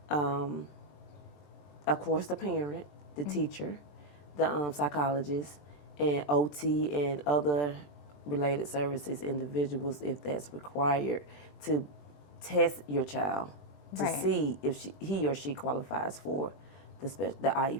of course, the parent, the teacher, the psychologist, and OT and other related services, individuals, if that's required, to test your child to see if he or she qualifies for the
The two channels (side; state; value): right; late; 20 ms